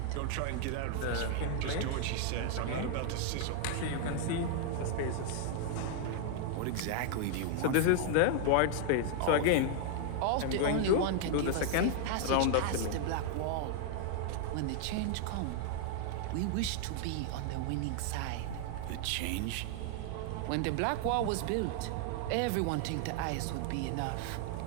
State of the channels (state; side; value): different; both; correlation 0.00